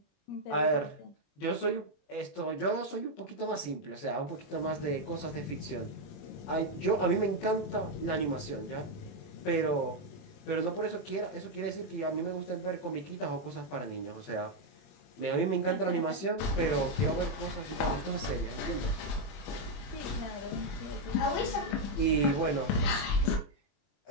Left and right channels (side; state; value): right; late; 21 ms